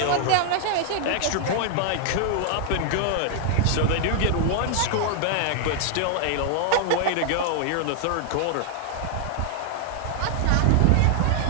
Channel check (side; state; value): both; different; correlation 0.00